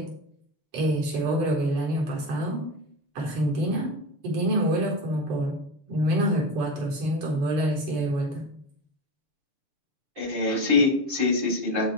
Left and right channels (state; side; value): late; left; 6.8 ms